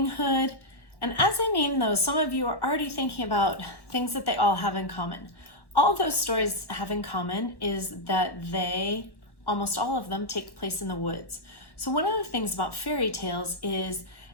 Hood. And as I name those, some of you are already thinking about things that they all have in common. All those stories have in common is that they, almost all of them, take place in the woods. So one of the things about fairy tales is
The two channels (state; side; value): late; right; 1.1 ms